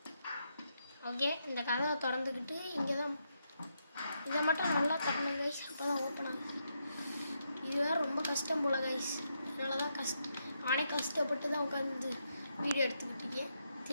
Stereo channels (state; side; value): inverted; both; correlation -0.81